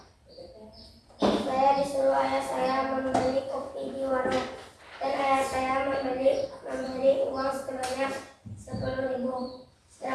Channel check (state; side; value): identical; both; correlation 1.00